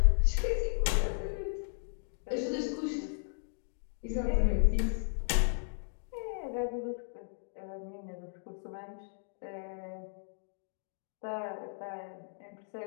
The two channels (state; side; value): silent; right; digital silence